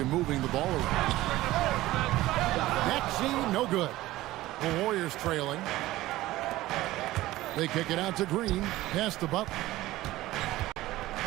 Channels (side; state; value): left; quieter; 16.8 dB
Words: moving the ball around. Maxey, no good. The Warriors trailing. They kick it out to Green. Pass to Butler.